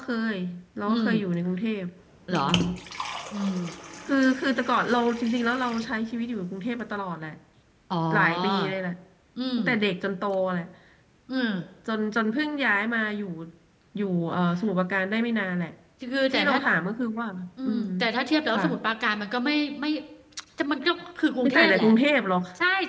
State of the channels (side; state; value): both; identical; correlation 1.00